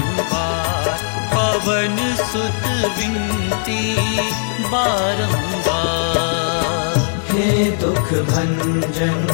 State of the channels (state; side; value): silent; right; 58 dB below the other